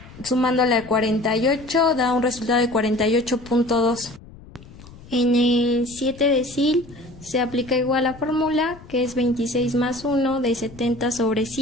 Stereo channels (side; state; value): left; noise; rumble, 20 dB below the sound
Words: sumándole al 48, da un resultado de 48.2. En el 7 decil se aplica igual la fórmula, que es 26 más 1 de 70 sobre